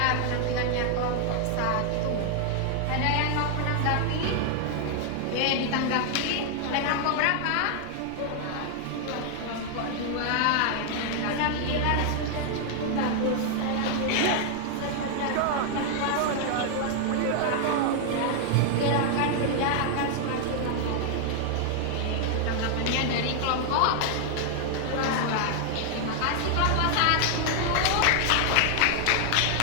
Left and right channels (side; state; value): both; different; correlation 0.00